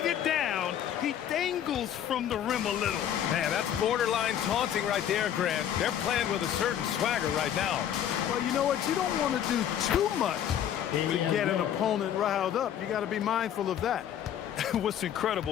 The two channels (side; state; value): right; quieter; 10.1 dB